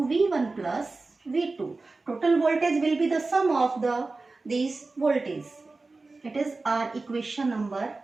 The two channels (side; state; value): left; quieter; 3.6 dB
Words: V1 plus V2. Total voltage will be the sum of these voltages. It is our equation number